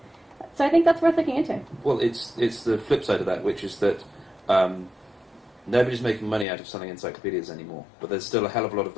So I think that's worth looking into. Well, it's the flip side of that, which is that nobody's making money out of selling encyclopedias anymore, but there's still a hell of a lot of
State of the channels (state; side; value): drops out; right; at 6.5 s